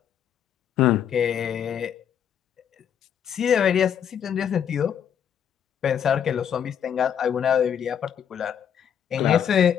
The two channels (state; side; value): quieter; right; 8.7 dB